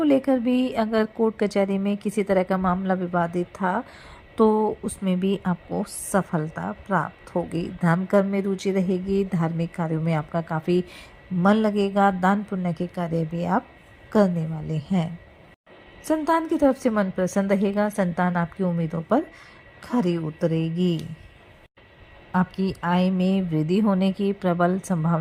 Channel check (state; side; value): identical; both; correlation 1.00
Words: लेकर भी अगर कोर्ट कचहरी में किसी तरह का मामला विवादित था तो उसमें भी आपको सफलता प्राप्त होगी। धर्म कर्म में रुचि रहेगी, धार्मिक कार्यों में आपका काफ़ी मन लगेगा, दान पुण्य के कार्य भी आप करने वाले हैं। संतान की तरफ से मन प्रसन्न रहेगा, संतान आपकी उम्मीदों पर खरी उतरेगी। आपकी आय में वृद्धि होने की प्रबल